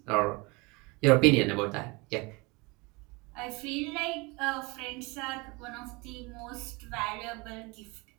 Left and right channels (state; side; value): quieter; left; 26.5 dB